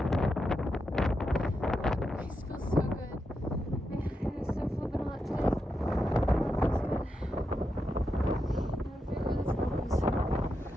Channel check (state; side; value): normal; both; correlation 0.86